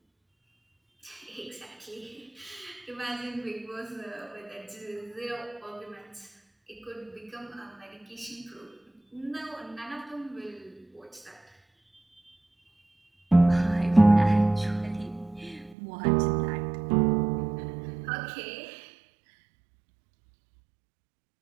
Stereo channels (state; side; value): drops out; left; at 15.8 s